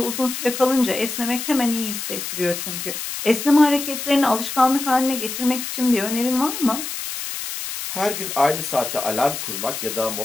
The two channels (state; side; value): noise; left; hiss, 6 dB below the sound